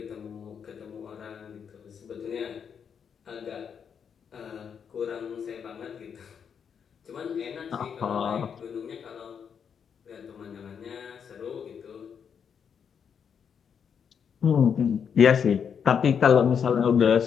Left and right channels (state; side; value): quieter; right; 7.2 dB